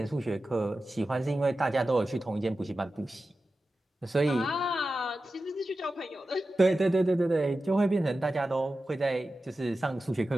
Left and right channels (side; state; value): both; normal; correlation 0.93